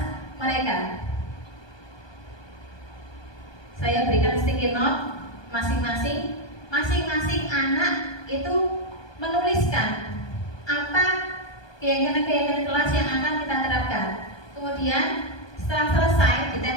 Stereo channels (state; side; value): late; right; 1.2 ms